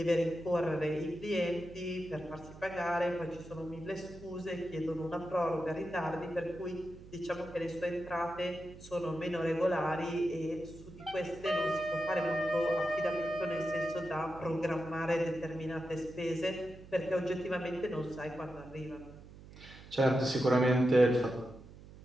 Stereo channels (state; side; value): noise; right; hum, 18 dB below the sound